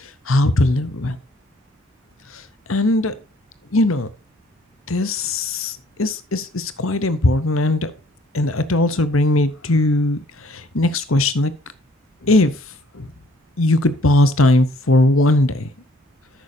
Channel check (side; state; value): both; normal; correlation 0.61